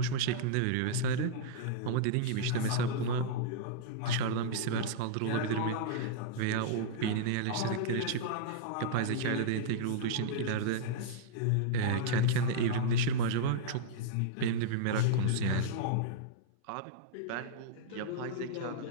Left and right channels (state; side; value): different; both; correlation -0.02